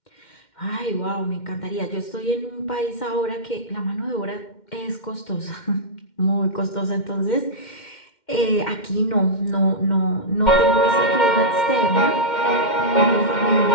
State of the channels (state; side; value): late; right; 2.1 ms